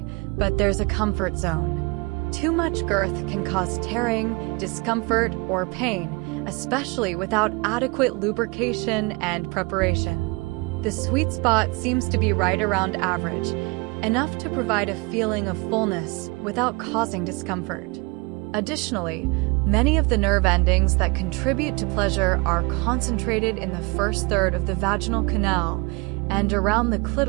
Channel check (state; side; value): quieter; left; 27.9 dB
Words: but there's a comfort zone. Too much girth can cause tearing, discomfort, or pain, especially without adequate lubrication and preparation. The sweet spot seems to be right around average, enough to provide a feeling of fullness without causing discomfort. Additionally, many of the nerve endings that contribute to pleasure are concentrated in the first third of the vaginal canal and around the